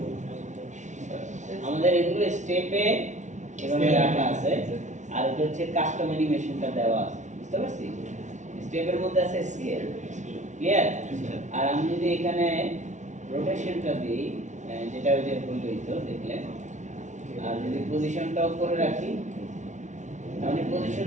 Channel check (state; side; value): late; left; 0.35 ms